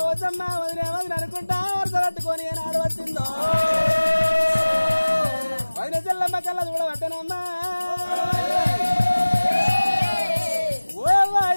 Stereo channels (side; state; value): both; inverted; correlation -1.00